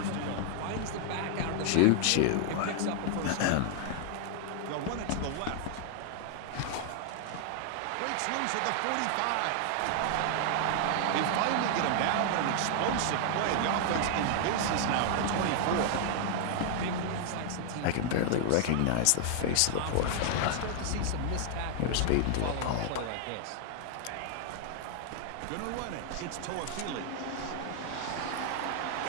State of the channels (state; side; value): different; both; correlation 0.00